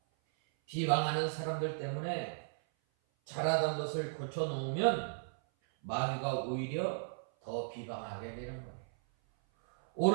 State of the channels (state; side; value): silent; left; 54 dB below the other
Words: 비방하는 사람들 때문에 잘하던 것을 고쳐놓으면 마귀가 오히려 더 비방하게 되는 거예요.